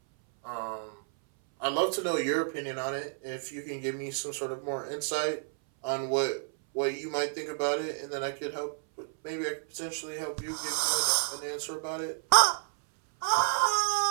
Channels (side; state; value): left; silent; 58 dB below the other